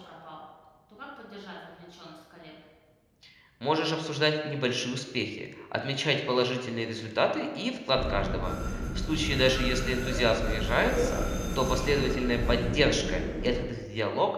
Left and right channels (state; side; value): identical; both; correlation 1.00